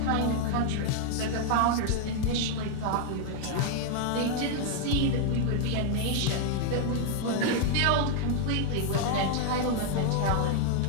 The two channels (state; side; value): different; both; correlation 0.00